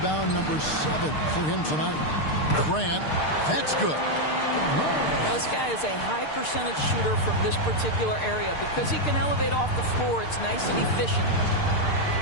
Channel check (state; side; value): late; right; 6.6 ms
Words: number 7 for him tonight. Grant, that's good. This guy is a high percentage shooter from this particular area. Because he can elevate off the floor, it's nice and efficient.